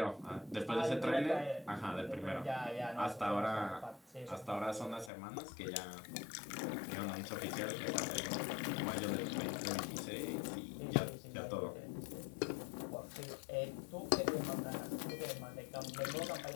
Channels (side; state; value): right; drops out; at 5.1 s